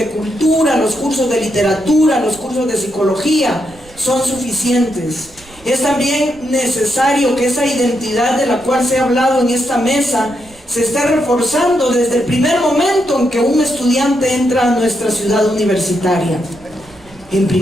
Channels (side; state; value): right; noise; rumble, 25 dB below the sound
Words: cultura, los cursos de literatura, los cursos de psicología son suficientes. Es también necesario que esa identidad de la cual se ha hablado en esta mesa se esté reforzando desde el primer momento en que un estudiante entra a nuestra ciudad universitaria. En